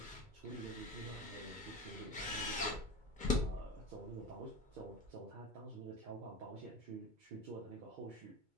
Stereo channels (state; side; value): late; left; 2.2 ms